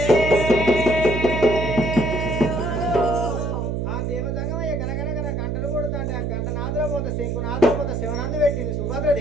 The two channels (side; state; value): right; noise; hum, 1 dB below the sound